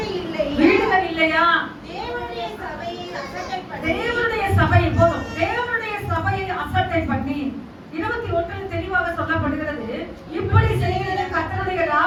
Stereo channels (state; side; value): identical; both; correlation 1.00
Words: இல்லை, வீடுகள் இல்லையா? தேவனுடைய சபையை அசட்டை பண்ணி, தேவனுடைய சபை போதும். தேவனுடைய சபையை அசட்டை பண்ணி 21 தெளிவாக சொல்லப்படுகிறது, இப்படி செய்கிறது கர்த்தருடைய